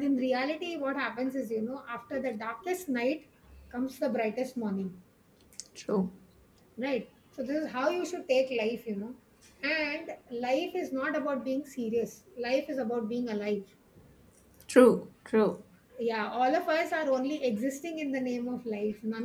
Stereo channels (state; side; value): identical; both; correlation 1.00